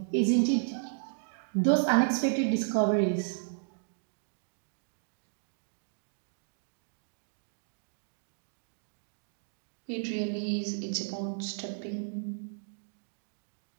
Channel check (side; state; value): left; silent; digital silence